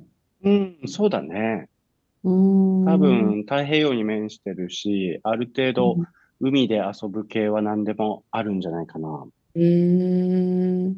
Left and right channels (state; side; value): identical; both; correlation 1.00